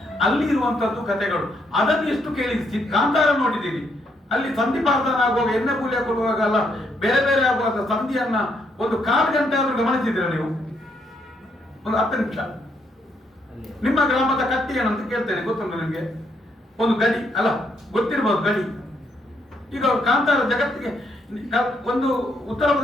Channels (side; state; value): both; normal; correlation 0.74